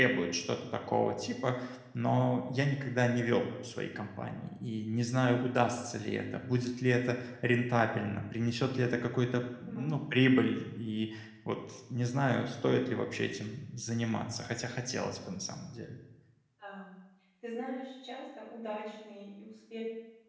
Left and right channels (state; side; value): identical; both; correlation 1.00